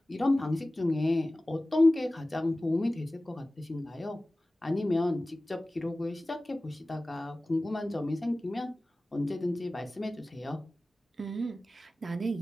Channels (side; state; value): both; normal; correlation 0.97